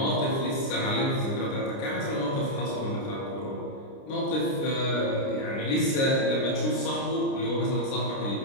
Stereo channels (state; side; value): late; right; 29 ms